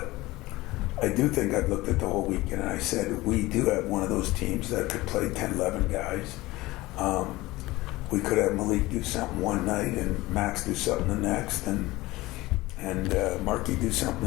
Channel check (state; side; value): quieter; right; 19.4 dB